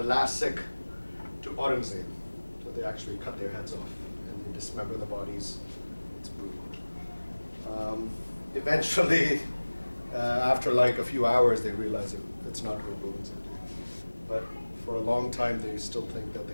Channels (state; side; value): inverted; both; correlation -1.00